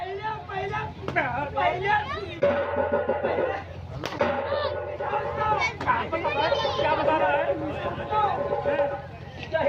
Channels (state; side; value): identical; both; correlation 1.00